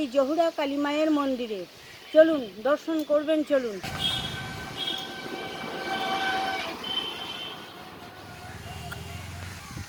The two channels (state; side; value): identical; both; correlation 1.00